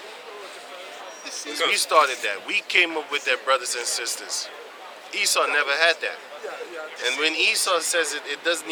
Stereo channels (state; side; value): identical; both; correlation 1.00